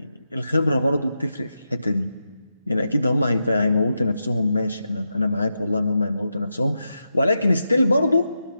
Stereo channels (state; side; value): inverted; both; correlation -0.87